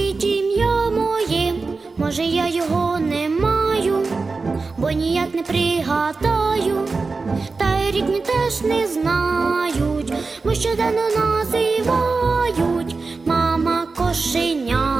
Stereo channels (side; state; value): left; quieter; 4.1 dB